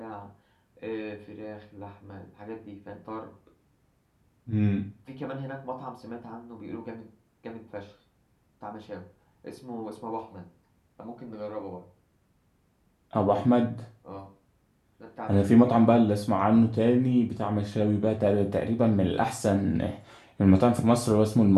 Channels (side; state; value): both; identical; correlation 1.00